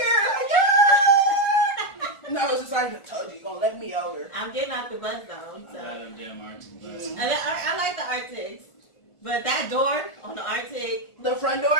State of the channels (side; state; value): right; late; 1.4 ms